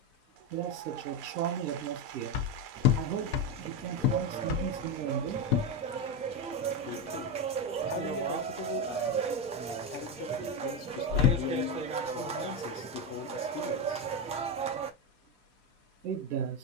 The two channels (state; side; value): normal; both; correlation 0.11